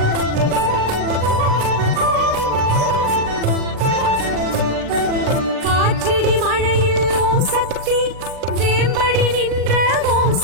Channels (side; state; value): left; late; 39 ms